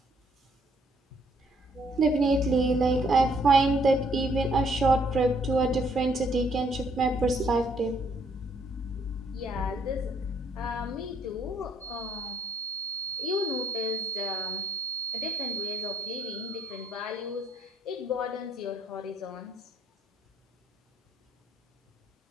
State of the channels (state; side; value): normal; both; correlation 0.67